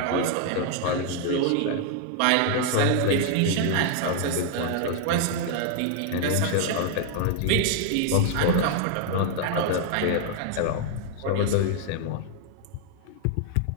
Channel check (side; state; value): both; different; correlation 0.00